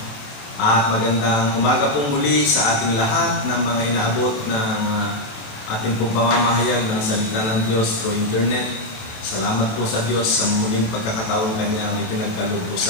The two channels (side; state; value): right; late; 28 ms